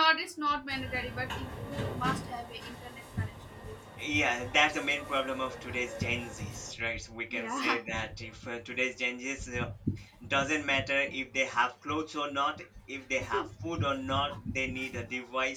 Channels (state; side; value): identical; both; correlation 1.00